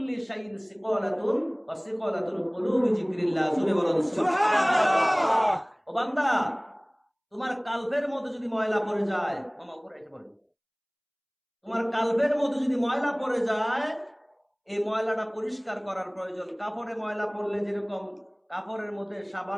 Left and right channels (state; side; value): identical; both; correlation 1.00